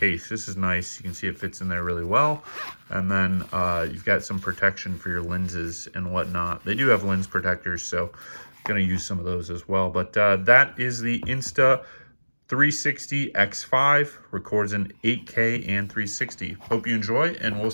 This is nice. You can see it fits in there really well. And then you've got some protection for your lenses and whatnot. They do have lens protectors, so I'm going to use some of those as well. But that is the Insta 360 X5. Records in 8K and 360. Hope you enjoy, and we'll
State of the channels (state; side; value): inverted; both; correlation -1.00